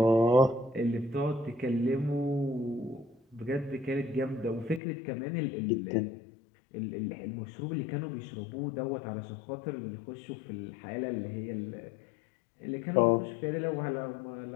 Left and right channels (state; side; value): drops out; right; at 4.8 s